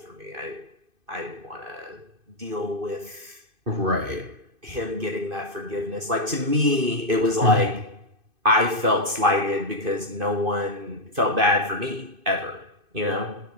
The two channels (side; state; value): left; late; 2.5 ms